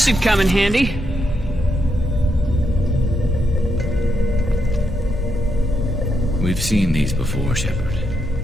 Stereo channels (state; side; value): normal; both; correlation 0.81